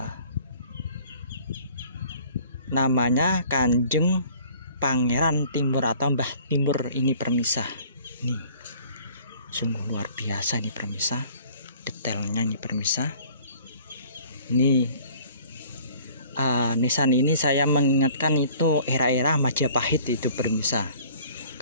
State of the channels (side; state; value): both; inverted; correlation -0.52